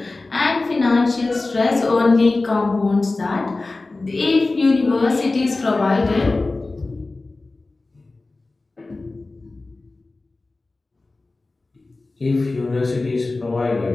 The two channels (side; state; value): right; quieter; 3.3 dB